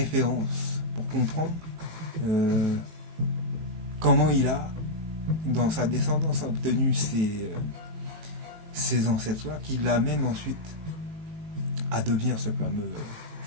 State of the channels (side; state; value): left; late; 19 ms